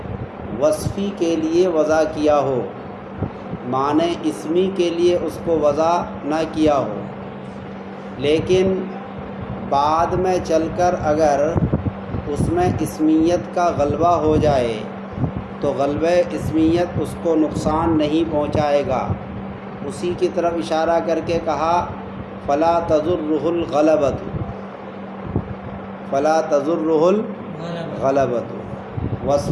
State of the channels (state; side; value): identical; both; correlation 1.00